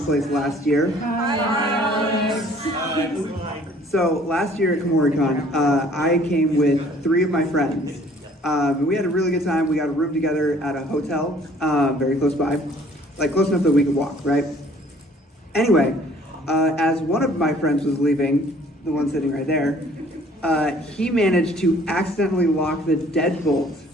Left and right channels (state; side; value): normal; both; correlation 0.56